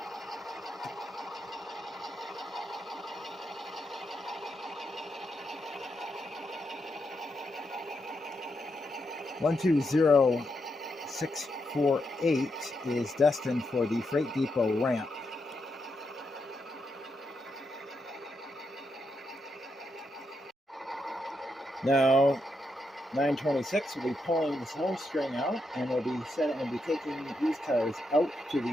(120)648 is destined for the Freight Depot ramp. Now, 926 will be pulling the slow string out, and will be taking these cars out to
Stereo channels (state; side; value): normal; both; correlation 0.83